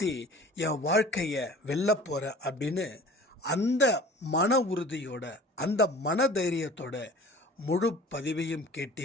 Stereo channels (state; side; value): normal; both; correlation 0.44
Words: என் வாழ்க்கையை வெல்ல போகிறேன் அப்படின்னு அந்த மன உறுதியோட அந்த மன தைரியத்தோட முழு பதிவையும்